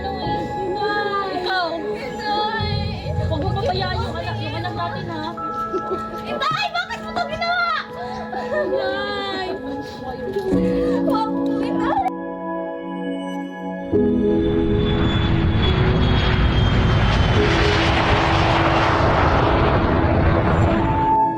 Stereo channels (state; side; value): identical; both; correlation 1.00